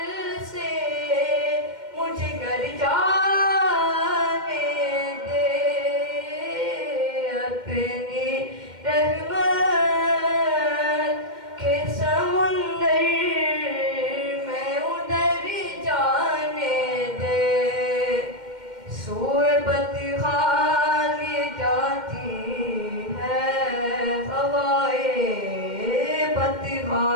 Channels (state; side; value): late; left; 2.1 ms